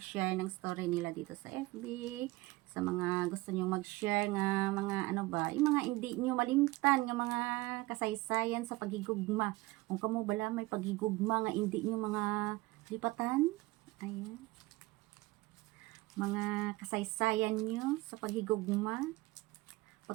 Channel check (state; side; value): quieter; left; 20.8 dB